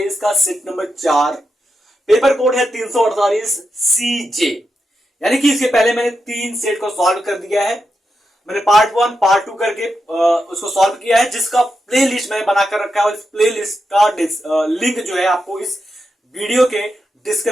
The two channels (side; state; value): both; normal; correlation 0.87